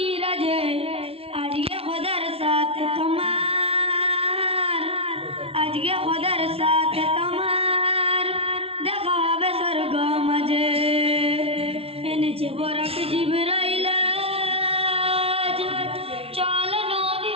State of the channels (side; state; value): left; late; 0.28 ms